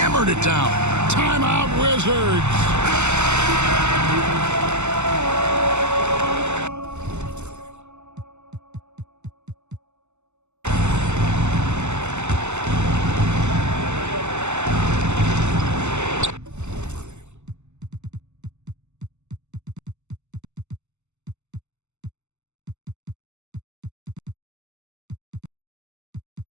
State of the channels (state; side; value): late; left; 0.83 ms